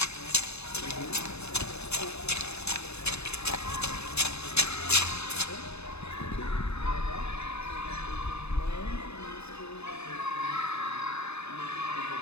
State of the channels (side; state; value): right; late; 0.80 ms